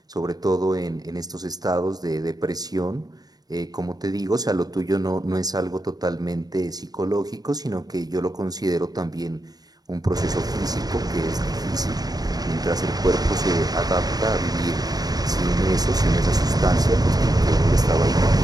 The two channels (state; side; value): late; left; 0.19 ms